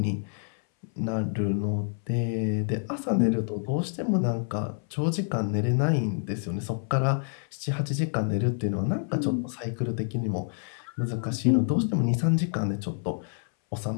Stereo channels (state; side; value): silent; right; 60 dB below the other